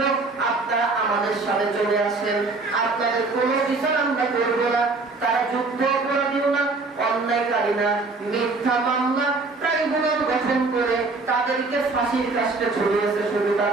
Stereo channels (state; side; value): quieter; left; 3.7 dB